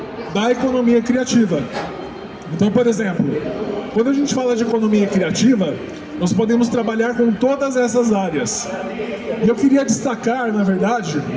da economia criativa. Então, por exemplo, quando a gente fala de economia criativa, nós podemos trabalhar com todas essas áreas. E eu queria destacar, na verdade,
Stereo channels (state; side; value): identical; both; correlation 1.00